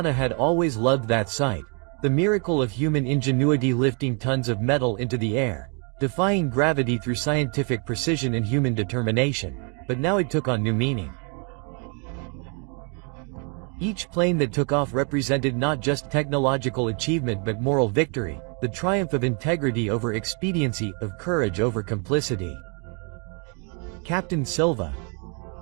had always loved that sight, the miracle of human ingenuity lifting tons of metal into the air, defying gravity through scientific precision and human determination, but now it took on new meaning. Each plane that took off represented not just technological achievement but moral victory, the triumph of integrity over expediency, of courage over complicity. Captain Silva.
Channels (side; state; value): left; quieter; 36.7 dB